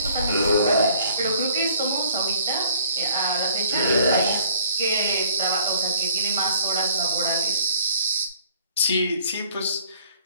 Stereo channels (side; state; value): both; inverted; correlation -0.58